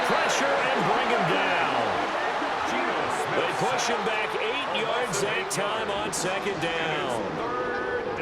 pressure and bring him down. They push him back 8 yards that time on 2nd down.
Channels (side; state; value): both; identical; correlation 1.00